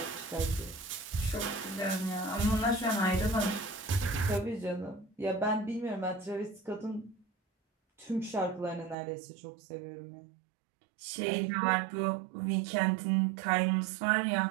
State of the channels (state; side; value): drops out; left; at 9.0 s